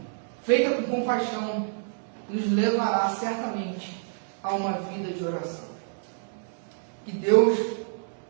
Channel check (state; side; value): silent; left; digital silence